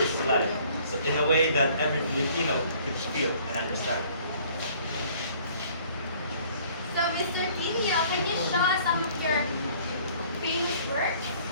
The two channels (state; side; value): inverted; both; correlation -0.56